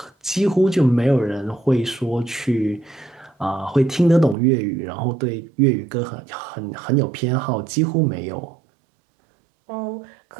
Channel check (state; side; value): drops out; left; at 4.4 s